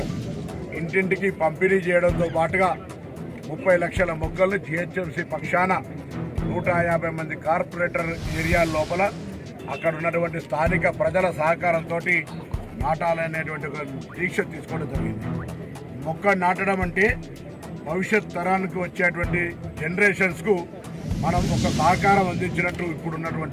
ఇంటింటికి పంపిణీ చేయడంతో పాటుగా 30 లక్షల మొక్కలను జిహెచ్ఎంసీ పక్షాన 150 మంది కార్పొరేటర్ ఏరియా లోపల అక్కడ ఉన్నటువంటి స్థానిక ప్రజల సహకారంతో నాటాలనేటువంటి ఒక దీక్ష తీసుకోవడం జరిగింది. మొక్క నాటడం అంటే భవిష్యత్ తరానికి వచ్చేటువంటి జనరేషన్స్కు మనం ఒక సహకారం అందించినట్టు ఇప్పుడు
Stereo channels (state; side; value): identical; both; correlation 1.00